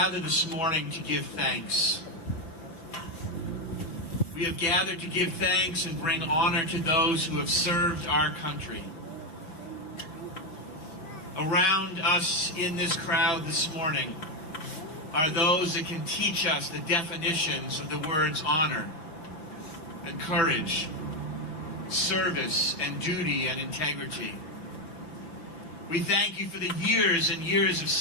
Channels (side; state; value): right; late; 5.9 ms